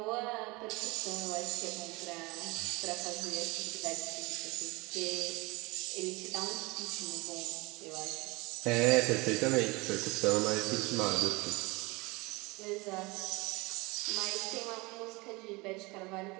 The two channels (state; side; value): quieter; left; 24.5 dB